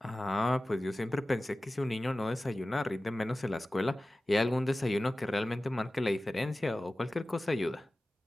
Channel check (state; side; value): normal; both; correlation 0.96